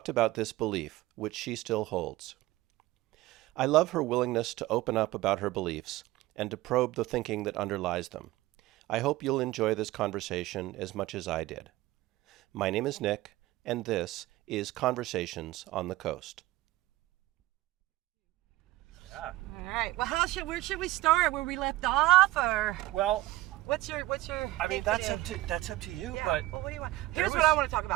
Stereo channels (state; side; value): quieter; left; 17.5 dB